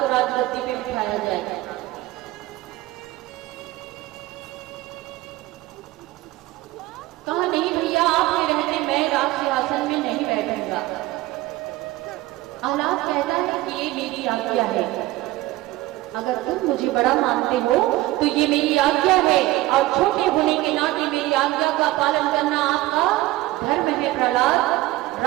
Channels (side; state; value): left; quieter; 17.8 dB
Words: को राजगद्दी पे बिठाया जाएगा। कहा नहीं भैया आपके रहते मैं राज सिंहासन में नहीं बैठूंगा। आह्लाद कहता है कि ये मेरी आज्ञा है, अगर तुम मुझे बड़ा मानते हो तो ये मेरी आज्ञा है और छोटे होने के नाते मेरी आज्ञा का पालन करना आपका धर्म है। प्रहलाद